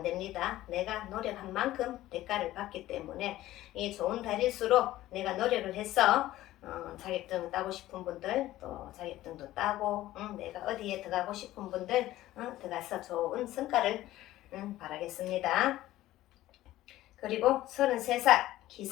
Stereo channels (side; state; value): right; quieter; 15.3 dB